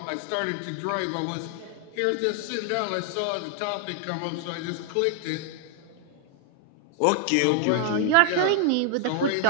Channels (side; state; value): both; different; correlation 0.00